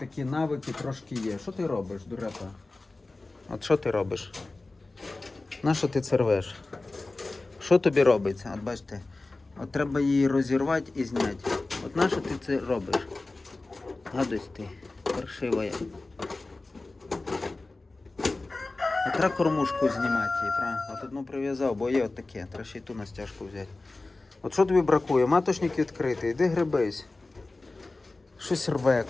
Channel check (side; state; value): right; quieter; 3.3 dB